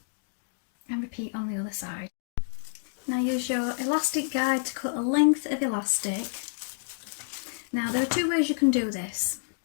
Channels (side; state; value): right; silent; digital silence